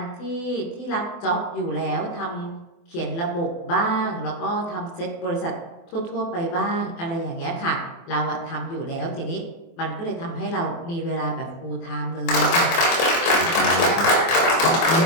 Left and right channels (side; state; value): right; late; 24 ms